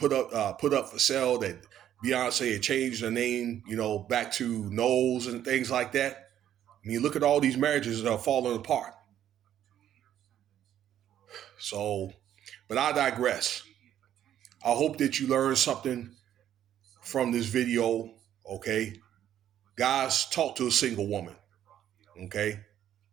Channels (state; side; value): quieter; left; 10.9 dB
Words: up for sale. That Beyonce had changed her name, back to Knowles and things like that. I mean, look at all these marriages that are falling apart. So, but I digress. I hope that you learned something from this video. Okay, guys, talk to a single woman. Okay.